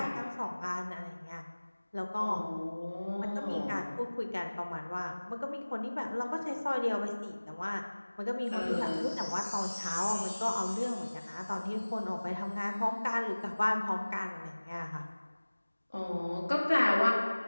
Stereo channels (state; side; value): inverted; both; correlation -1.00